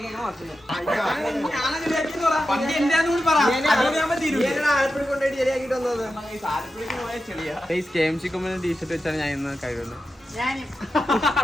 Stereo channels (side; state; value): both; normal; correlation 0.90